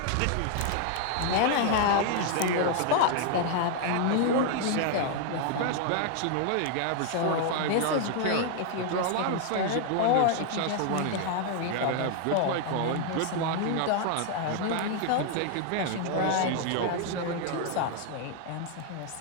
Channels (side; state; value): both; different; correlation 0.00